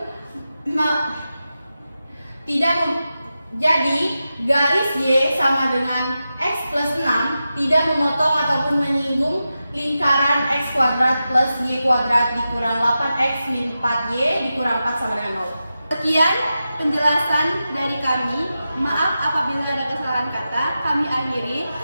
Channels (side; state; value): both; inverted; correlation -0.91